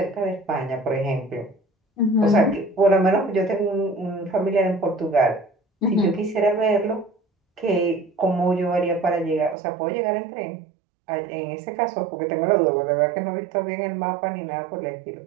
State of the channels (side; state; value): left; drops out; at 9.6 s